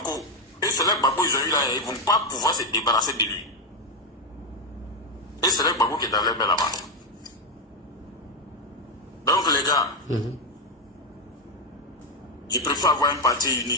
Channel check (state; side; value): normal; both; correlation 0.07